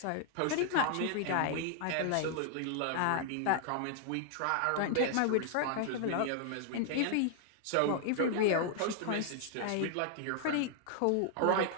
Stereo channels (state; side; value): different; both; correlation 0.00